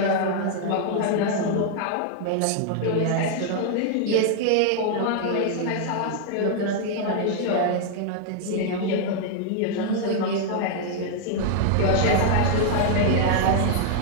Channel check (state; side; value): different; both; correlation 0.00